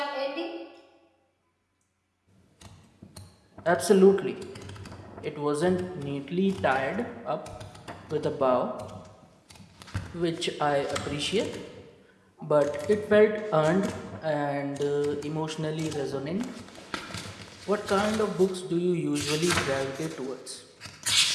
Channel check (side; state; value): both; identical; correlation 1.00